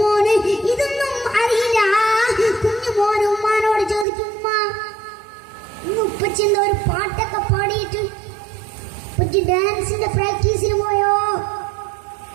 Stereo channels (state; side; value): drops out; left; at 4.0 s